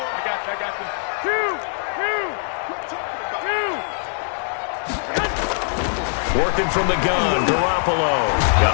got you. I got you. 2. Working from the gun, Garoppolo.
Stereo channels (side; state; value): right; silent; digital silence